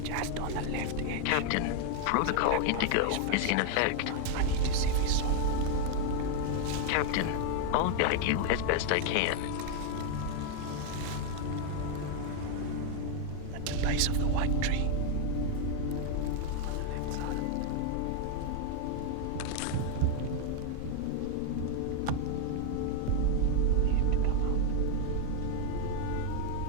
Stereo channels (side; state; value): both; different; correlation 0.00